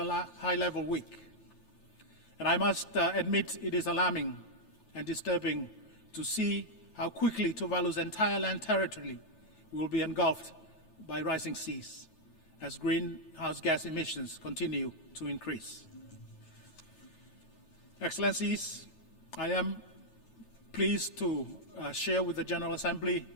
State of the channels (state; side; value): late; right; 9.1 ms